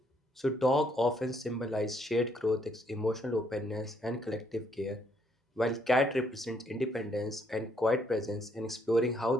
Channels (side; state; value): both; normal; correlation 0.70